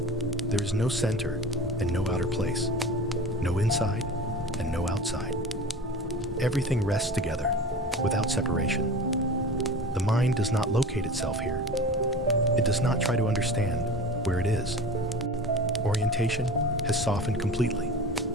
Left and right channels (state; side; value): normal; both; correlation 0.35